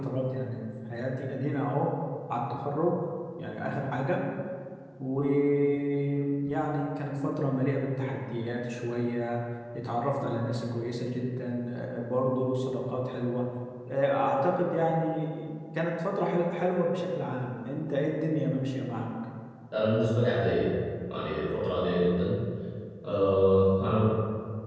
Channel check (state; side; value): identical; both; correlation 1.00